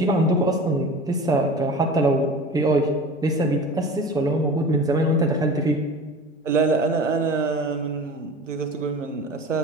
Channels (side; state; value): both; normal; correlation 0.37